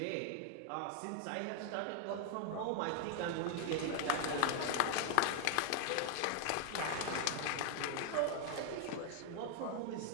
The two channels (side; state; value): both; different; correlation 0.00